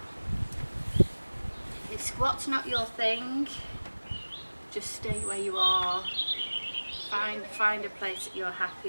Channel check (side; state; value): both; inverted; correlation -1.00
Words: if squat's not your thing, just stay where you are, find a place that you're happy